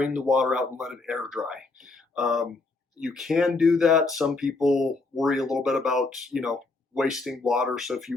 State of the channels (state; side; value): quieter; right; 3.6 dB